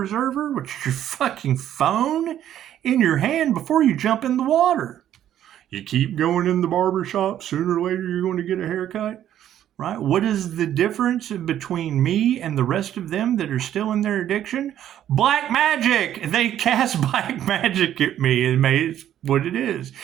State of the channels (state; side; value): quieter; left; 11.2 dB